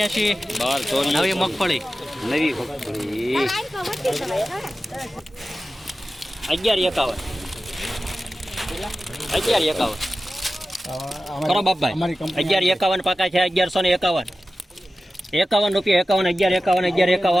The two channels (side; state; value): both; normal; correlation 0.94